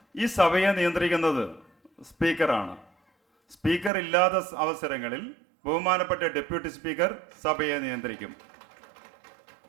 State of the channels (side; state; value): left; drops out; at 3.9 s